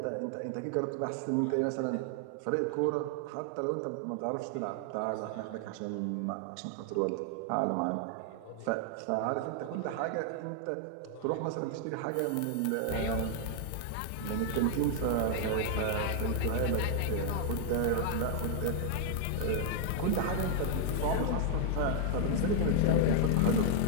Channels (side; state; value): both; different; correlation 0.00